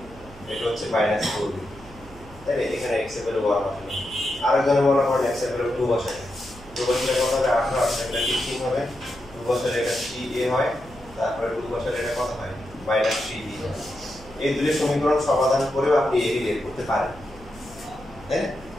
এটা হচ্ছে -4b, তাই না? এখানে x এর ভ্যালু 1 বসানো, আরেকজনে মনে করেন x এর ভ্যালু 2 বসায়, 2 বসালে কত হবে 18, এটা 15 হবে, 2 বসালে এটা 3a হয়, তারপরে 2 বসালে এটা কত হয় -3b হয়। এই দুটো সমীকরণ সমাধান করেও আপনি এই বের করতে পারেন, তাই না?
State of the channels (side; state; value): right; noise; hum, 20 dB below the sound